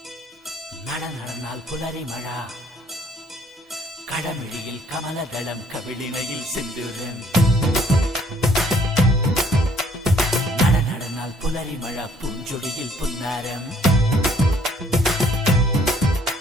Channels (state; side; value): normal; both; correlation 0.61